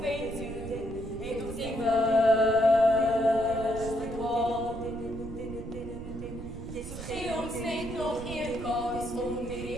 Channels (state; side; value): noise; right; rumble, 10 dB below the sound